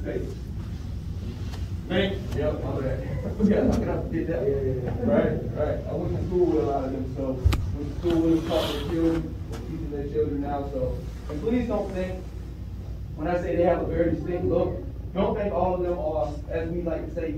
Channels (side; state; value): both; identical; correlation 1.00